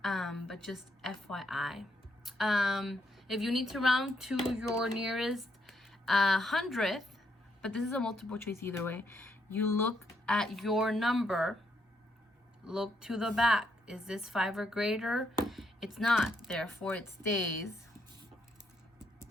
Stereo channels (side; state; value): both; normal; correlation 0.76